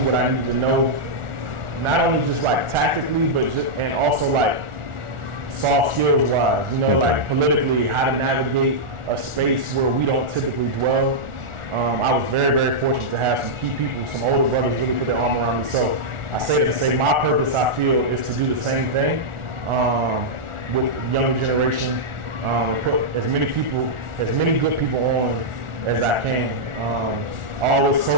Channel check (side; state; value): left; late; 1.4 ms